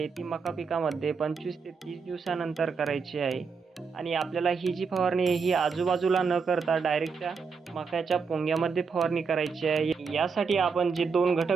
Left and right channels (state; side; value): quieter; left; 5.3 dB